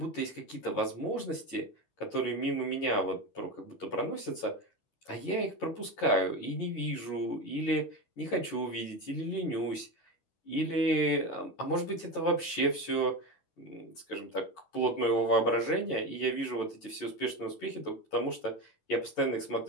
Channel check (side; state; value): right; late; 12 ms